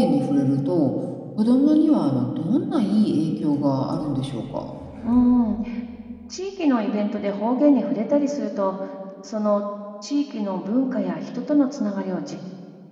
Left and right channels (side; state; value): both; identical; correlation 1.00